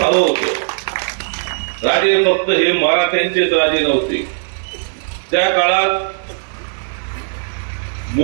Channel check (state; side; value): silent; left; 63 dB below the other